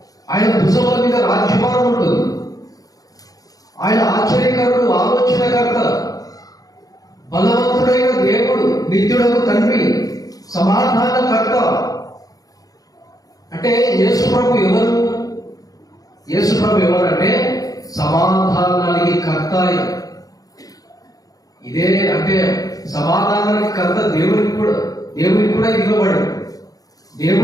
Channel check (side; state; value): right; late; 0.18 ms